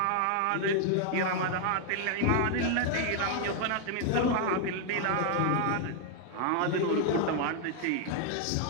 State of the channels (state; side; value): different; both; correlation 0.00